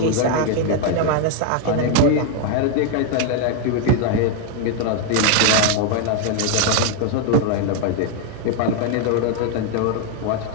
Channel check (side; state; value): both; different; correlation 0.01